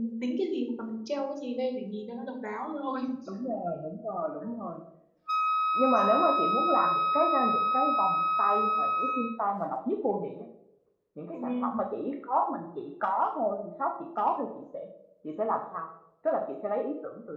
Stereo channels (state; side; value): identical; both; correlation 1.00